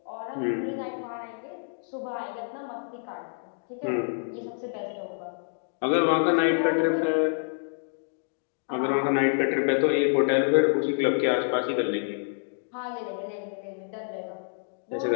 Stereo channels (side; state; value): right; silent; digital silence